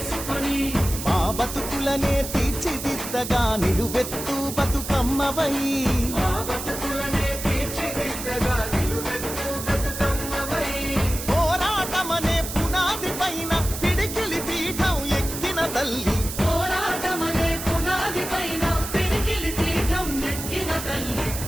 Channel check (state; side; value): noise; right; hiss, 7 dB below the sound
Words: మా బతుకులనే తీర్చిదిద్దగా నిలువెత్తు బతుకమ్మవై, మా బతుకులనే తీర్చిదిద్దగా నిలువెత్తు బతుకమ్మవై, పోరాటమనే పునాది పైన పిడికిలి పీఠం ఎక్కిన తల్లి, పోరాటమనే పునాది పైన పిడికిలి పీఠం ఎక్కిన తల్లి,